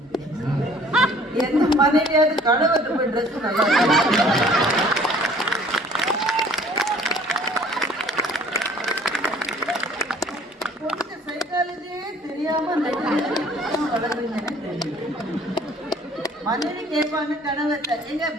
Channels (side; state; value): both; normal; correlation 0.54